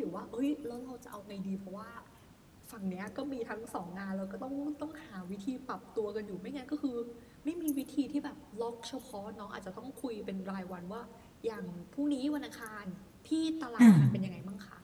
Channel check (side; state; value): both; identical; correlation 1.00